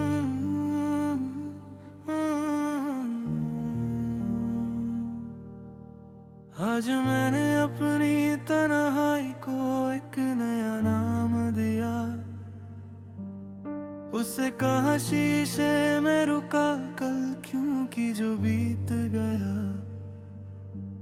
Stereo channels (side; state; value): both; identical; correlation 1.00